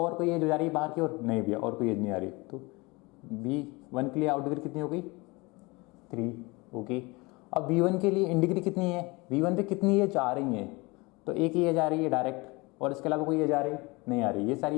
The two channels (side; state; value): right; quieter; 25.0 dB